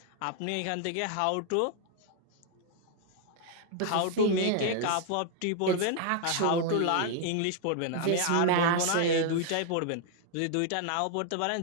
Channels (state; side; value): different; both; correlation 0.00